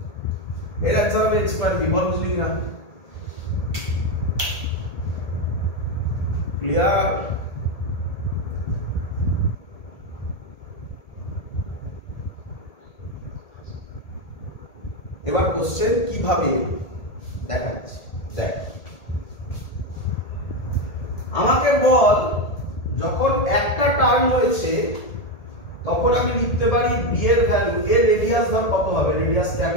এর অ্যান্সার হবে x² b বল বুঝলি না ক্লিয়ার এবার কোশ্চেন কিভাবে দেখাচ্ছি দেখ আমাকে বল যখন একটা টার্ন হয়েছে তখন আমি লিখতে পারি b এর ভ্যালু এর রেডিয়াস ধর কত হবে রেডিয়াস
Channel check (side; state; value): right; late; 1.8 ms